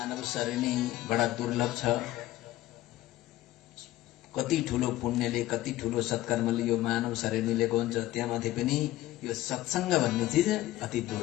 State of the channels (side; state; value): right; quieter; 15.5 dB